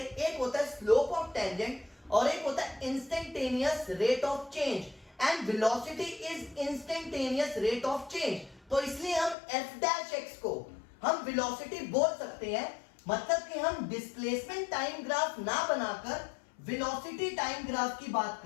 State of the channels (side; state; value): right; drops out; at 9.3 s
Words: एक होता है स्लोप ऑफ टेंजेंट और एक होता है instantaneous rate of change, and velocity is instantaneous rate of change. तो इसलिए हम एफ डैश एक्स को हम वेलोसिटी बोल सकते हैं, मतलब कि हम डिस्प्लेसमेंट टाइम ग्राफ ना बनाकर वेलोसिटी टाइम ग्राफ की बात